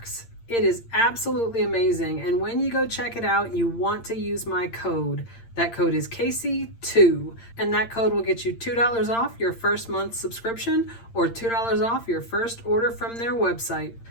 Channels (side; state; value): right; late; 8.7 ms